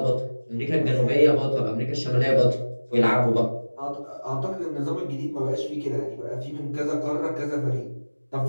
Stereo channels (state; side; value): inverted; both; correlation -1.00